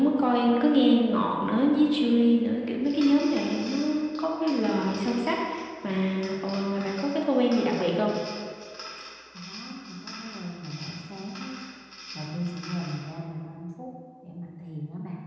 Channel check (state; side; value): identical; both; correlation 1.00